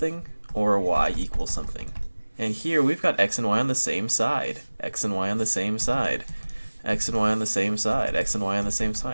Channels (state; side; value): inverted; both; correlation -1.00